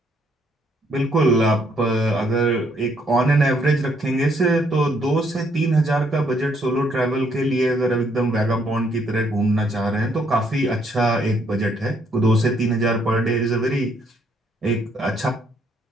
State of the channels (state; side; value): normal; both; correlation 0.70